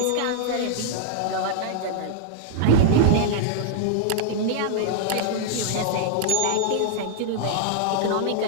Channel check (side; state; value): both; different; correlation -0.01